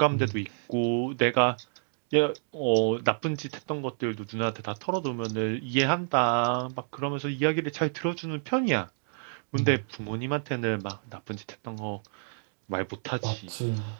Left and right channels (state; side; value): silent; left; digital silence